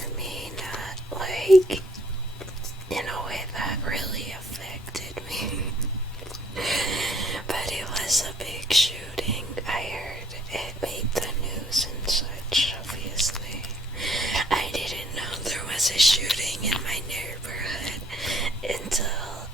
me, not like in a way that really affected me. But it was a big shooting. I heard it made the news and such, obviously. I didn't know there was a shooting in my neighborhood until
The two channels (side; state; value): both; normal; correlation 0.63